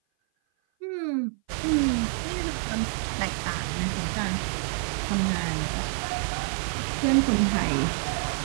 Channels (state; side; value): silent; left; 56 dB below the other